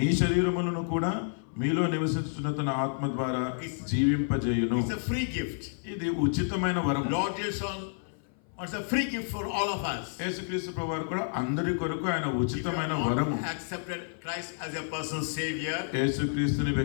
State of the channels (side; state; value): right; silent; 57 dB below the other